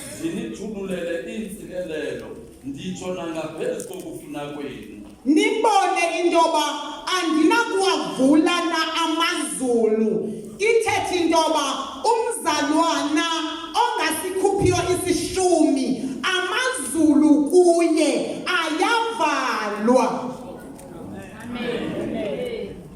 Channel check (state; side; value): identical; both; correlation 1.00